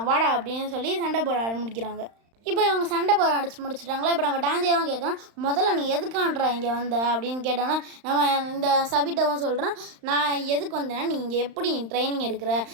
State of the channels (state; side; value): late; left; 35 ms